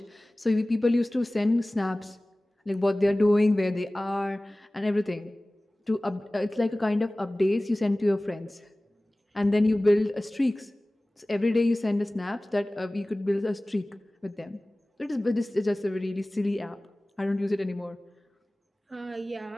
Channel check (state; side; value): normal; both; correlation 0.98